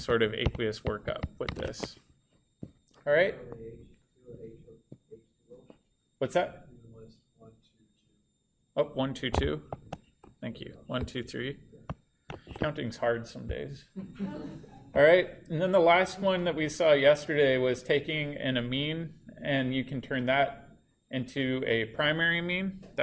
of aqueous workup with this. All right? What's that? Oh, 1, 2, 2. Thank you. 1, 2, 3. Counting's hard some days. All right, and then the last one that we saw yesterday was taking an amine, and you can turn that into a primary amine.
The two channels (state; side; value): identical; both; correlation 1.00